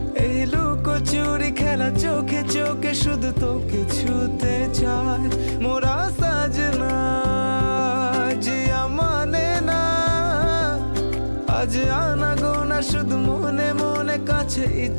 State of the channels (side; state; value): both; inverted; correlation -1.00